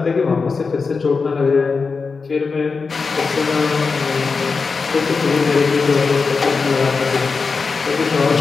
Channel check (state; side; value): quieter; right; 4.7 dB